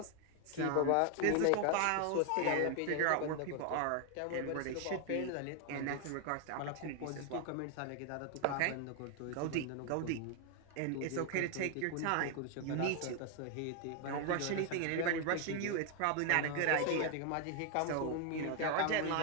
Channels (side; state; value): both; different; correlation 0.00